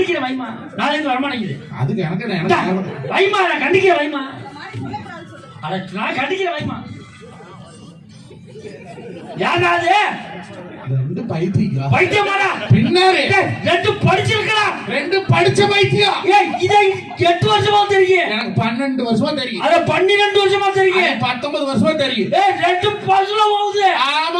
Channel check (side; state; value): both; identical; correlation 1.00